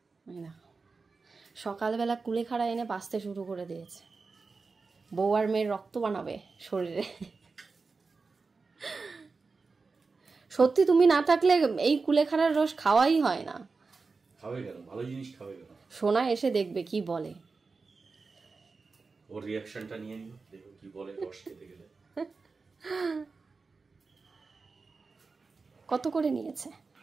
না, সকালবেলা কুলেখাড়া এনে বাঁচতে শুরু করে দিয়েছে। বউ আর মেয়ের রক্ত বানাবে শরীরে। সত্যি তুমি না থাকলে এই কুলেখাড়ার রস খাওয়াই হয় না। খাবে কেন? ভালো জিনিস খাবে কেন? সোনা এসে দেখবে কি বলে, ওর রিঅ্যাকশনটা নিয়ে নিও, দেখো কি বলে রস খেতে গেলে। কত করে নিয়েছে?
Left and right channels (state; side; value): quieter; left; 4.3 dB